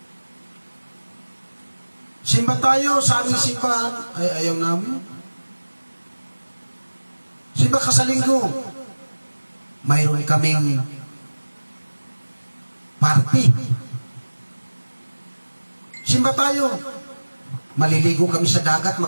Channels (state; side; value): inverted; both; correlation -1.00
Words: Simba tayo sa aming simbahan, ay ayaw namin. Simba ka sa linggo, mayroon kaming party. Simba tayo, maliligo kami sa dagat,